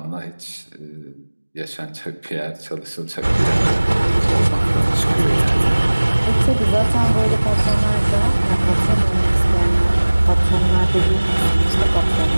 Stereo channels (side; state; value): both; inverted; correlation -1.00